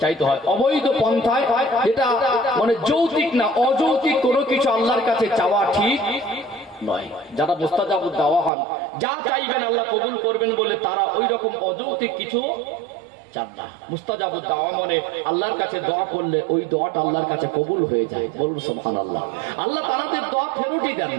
চাইতে হয়। অবৈধ পন্থায়, যেটা মানে যৌক্তিক না, অযৌক্তিক কোনো কিছু আল্লাহর কাছে চাওয়া ঠিক নয়। যারা মুস্তাজাবুদ দাওয়া হন, যা চাইবেন আল্লাহ কবুল করবেন বলে তারা ওই রকম অযৌক্তিক কিছু চান না। মুস্তাজাবুদ দাওয়া মানে আল্লাহর কাছে দোয়া করলে ওই দোয়াটা আল্লাহর কাছে কবুল হয়ে যায়, বলুন সুবহানাল্লাহ। আল্লাহ তাদের দোয়া ফেরতই দেন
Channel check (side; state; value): left; drops out; at 8.5 s